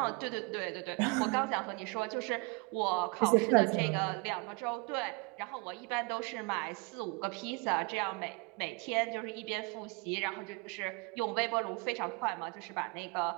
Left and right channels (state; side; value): quieter; left; 28.3 dB